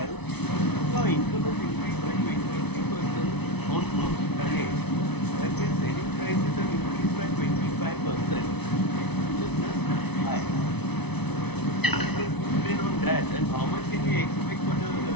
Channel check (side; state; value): right; late; 0.99 ms